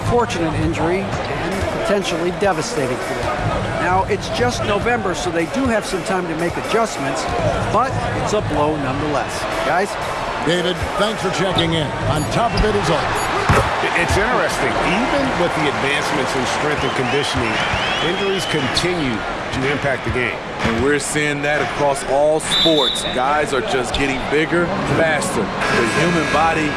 injury and potentially devastating for them. Now, it's just November, so they do have some time to make adjustments, but it's a blow nonetheless. Guys? David, thanks for checking in. On top of it as always. It's interesting. Even with the advancements in strength and conditioning, injuries continue to impact the game. And we're seeing that across all sports. Guys are just getting bigger, faster. The human body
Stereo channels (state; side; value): identical; both; correlation 1.00